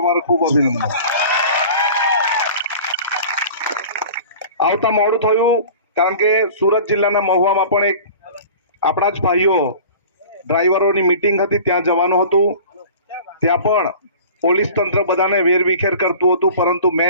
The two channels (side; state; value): both; inverted; correlation -0.41